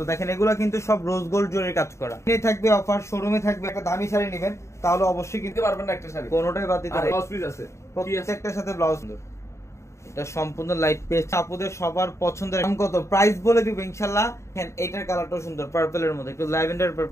দেখেন এগুলা কিন্তু সব রোজ গোল্ড জরির কাজ করা। এখানে থাকবে অফার, শোরুমে থাকবে। একটা দামি শাড়ি নেবেন তাহলে অবশ্যই কিনতে পারবেন না একটা শাড়ি, কোনোটাই বাদ দিতে পারবেন। ব্লাউজ পিস আছে, প্রত্যেকটার সাথে ব্লাউজ সুন্দর। এটা সম্পূর্ণ লাইট পেস্ট, আপুদের সবার পছন্দের। দাম কত, প্রাইস বলে দিব ইনশাআল্লাহ। দেখেন এইটার কালারটাও সুন্দর, পার্পলের মধ্যে একটু ল্যাভেন্ডার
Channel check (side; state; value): right; late; 0.14 ms